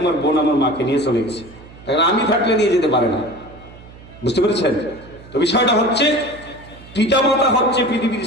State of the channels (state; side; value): noise; right; hum, 20 dB below the sound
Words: আমার বোন আমার মাকে নিয়ে চলে গেছে, কারণ আমি থাকলে নিয়ে যেতে পারে না। বুঝতে পেরেছেন তো? বিষয়টা হচ্ছে পিতামাতা হচ্ছে পৃথিবীর